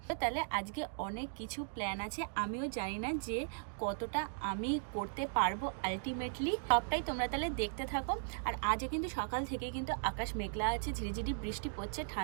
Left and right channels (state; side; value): silent; left; digital silence